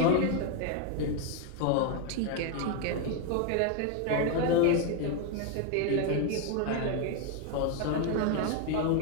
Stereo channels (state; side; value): different; both; correlation 0.01